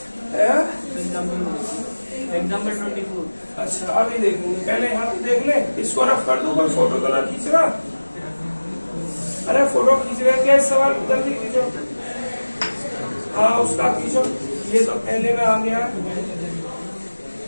24। अच्छा अभी देखेंगे, पहले यहाँ पे देख ले, इसको रफ कर दूं, कोई फोटो तो ना खींच रहा, अरे फोटो खींच रहे क्या, इस सवाल को जल्दी खींचो, हाँ उसका खींचो, ये तो पहले में आ गया,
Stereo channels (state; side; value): inverted; both; correlation -1.00